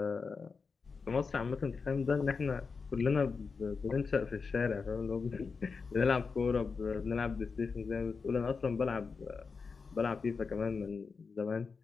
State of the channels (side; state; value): right; quieter; 5.0 dB